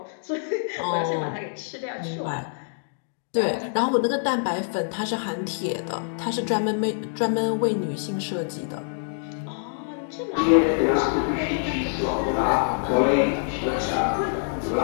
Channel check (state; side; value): silent; right; digital silence